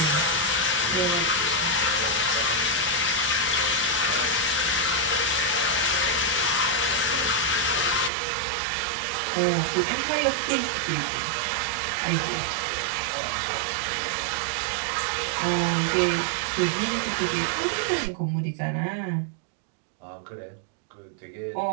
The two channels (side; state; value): left; drops out; at 8.1 s